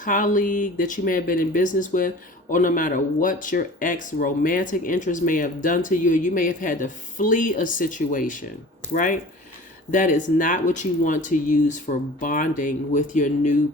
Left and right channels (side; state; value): both; normal; correlation 0.42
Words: that you may have been in business with, or no matter what your ex-romantic interest may have done to you, you may have had to flee a situation, right? That is not what you want to use for bonding with your new